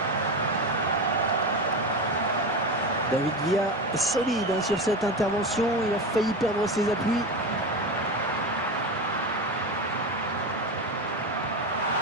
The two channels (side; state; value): both; normal; correlation 0.21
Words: David Villa est solide sur cette intervention. Il a failli perdre ses appuis.